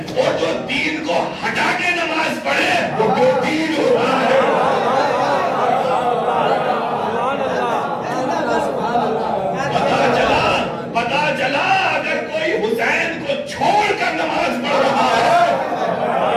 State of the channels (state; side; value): identical; both; correlation 1.00